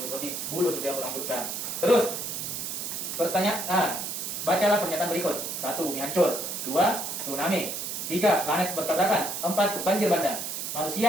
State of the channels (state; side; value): noise; right; hiss, 4 dB below the sound